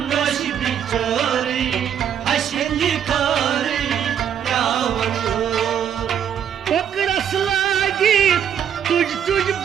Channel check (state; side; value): quieter; left; 8.9 dB